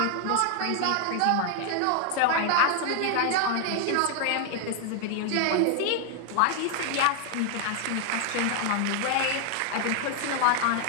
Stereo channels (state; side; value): different; both; correlation 0.01